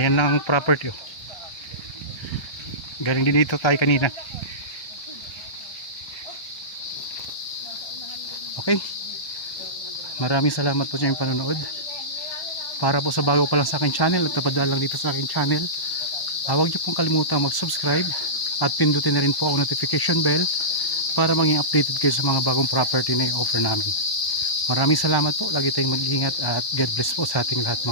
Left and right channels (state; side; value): late; right; 1.1 ms